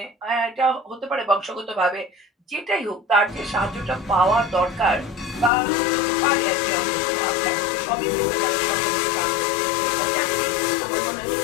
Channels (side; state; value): right; drops out; at 5.5 s